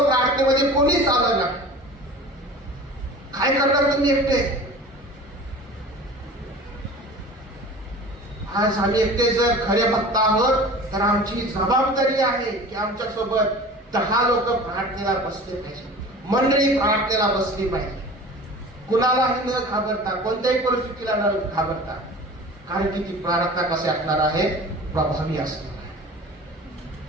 प्रार्थनेमध्ये, कोणीच आलं ना. काय करणार तुम्ही एकटे? आज आम्ही एकटे जर खरे भक्त आहोत तर आमची जबाबदारी आहे की आमच्या सोबत 10 लोक प्रार्थनेला बसले पाहिजे, मंडळी प्रार्थनेला बसली पाहिजे, कुणालाही न घाबरता, कोणत्याही परिस्थितीला न घाबरता. कारण की ती प्रार्थना कशी असणार आहे? प्रभावी असणार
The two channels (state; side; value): normal; both; correlation 0.39